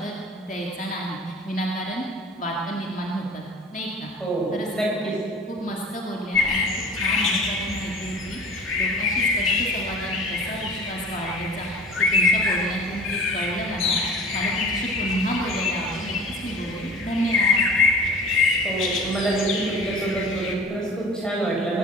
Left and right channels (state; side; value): normal; both; correlation 0.41